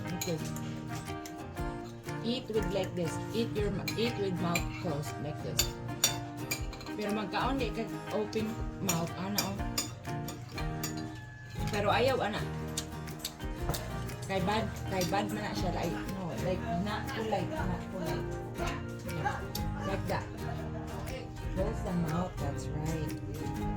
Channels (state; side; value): identical; both; correlation 1.00